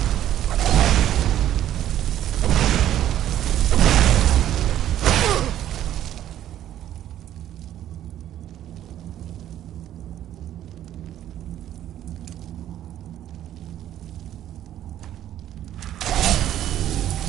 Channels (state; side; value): quieter; left; 11.8 dB